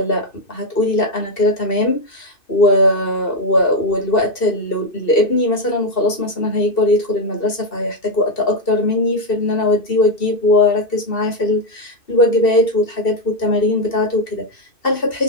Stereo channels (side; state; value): right; late; 2.7 ms